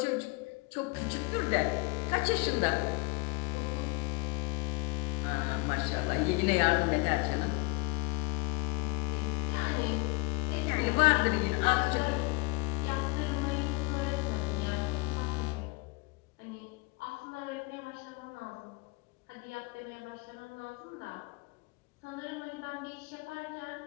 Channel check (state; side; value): quieter; right; 26.5 dB